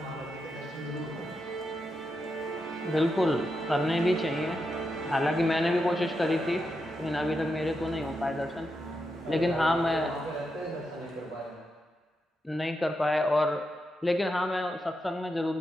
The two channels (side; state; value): both; normal; correlation 0.85